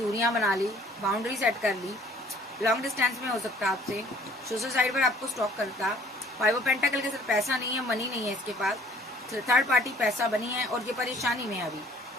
बना ली, बाउंड्री सेट कर ली, लॉन्ग डिस्टेंस में हो सकता है आपसे, सोशल साइड पर आपको स्टॉक करता। 5 ऑफ पेंटाकल के साथ पैसा नहीं है, मनी नहीं है इसके पास, थर्ड पार्टी पैसा बनी है और ये परेशानी में है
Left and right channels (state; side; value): normal; both; correlation 0.55